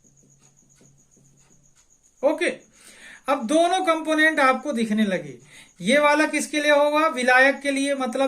ओके, अब दोनों कंपोनेंट आपको दिखने लगे। ये वाला किसके लिए होगा, विलायक के लिए,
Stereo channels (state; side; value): identical; both; correlation 1.00